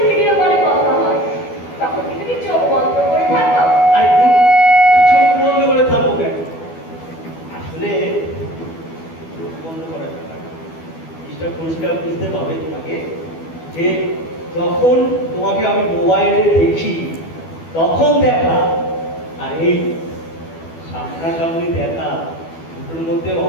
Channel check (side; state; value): right; late; 12 ms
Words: ভিডিও কলে কথা হয়, তখন কি তুমি চোখ বন্ধ করে থাকো? আরে চোখ বন্ধ করে থাকবো কেন? আসলে চোখ বন্ধ করা যাবে না। জিনিসটা পরিষ্কার বুঝতে হবে তোমাকে যে যখন তোমাকে আমি মোবাইলে দেখি তখন দেখা আর এই সামনাসামনি দেখা দুটোর মধ্যে